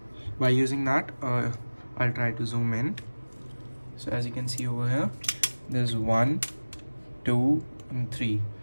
by using that, I'll try to zoom in. So as you can see over here, there's 1, 2 and 3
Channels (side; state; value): both; inverted; correlation -1.00